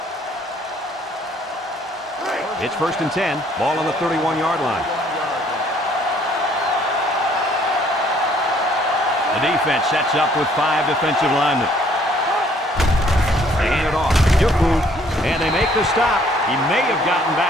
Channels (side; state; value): both; normal; correlation 0.62